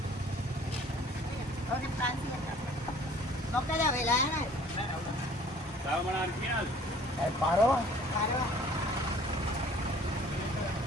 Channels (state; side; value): normal; both; correlation 0.53